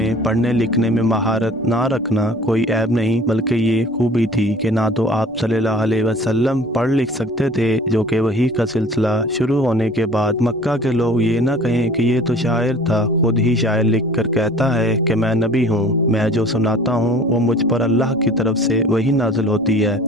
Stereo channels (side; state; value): left; noise; rumble, 28 dB below the sound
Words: पढ़ने लिखने में महारत ना रखना कोई ऐब नहीं बल्कि ये खूबी थी कि ना तो आप सल्लल्लाहु अलैहि वसल्लम पढ़ लिख सकते थे, जो कि वही का सिलसिला शुरू होने के बाद मक्का के लोग ये ना कहें कि ये तो शायर था, खुद ही शायर लिख कर कहता है कि मैं नबी हूँ, मैं जो सुनाता हूँ वो मुझ पर अल्लाह की तरफ से वही नाजिल होती है।